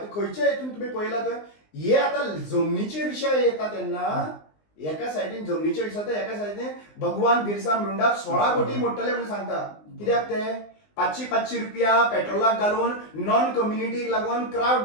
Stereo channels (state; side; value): late; right; 19 ms